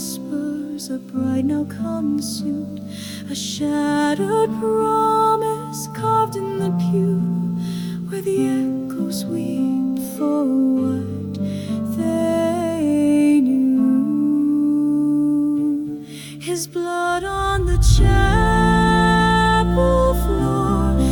a bride now consumed, a shattered promise carved in the pew, where the echoes weep for what they knew. His blood on the chapel floor,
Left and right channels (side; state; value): both; identical; correlation 1.00